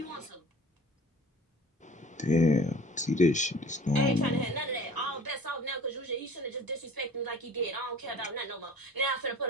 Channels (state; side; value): normal; both; correlation 0.46